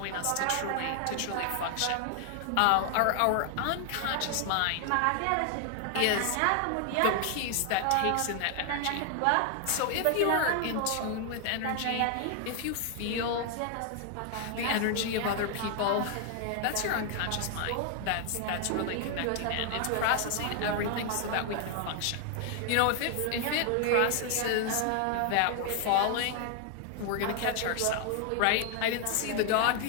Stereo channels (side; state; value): both; different; correlation 0.00